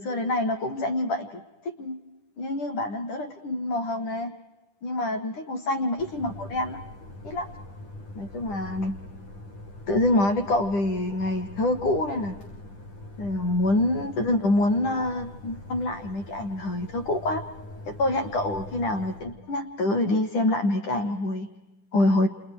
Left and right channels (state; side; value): late; right; 10 ms